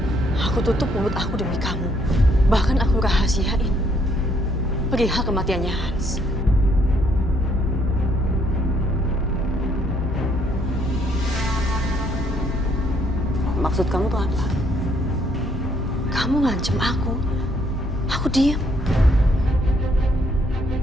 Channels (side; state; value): both; normal; correlation 0.68